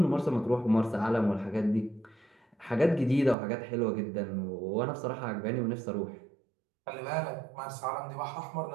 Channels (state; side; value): drops out; left; at 3.4 s